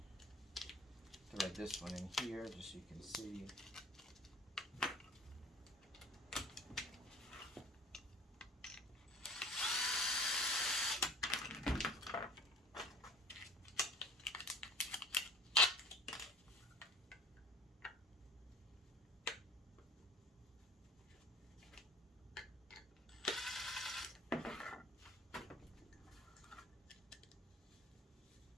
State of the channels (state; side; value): normal; both; correlation 0.46